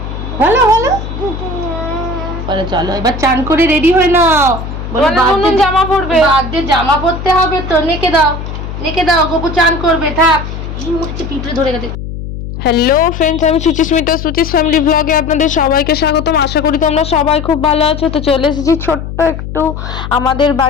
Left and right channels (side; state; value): left; noise; hum, 8 dB below the sound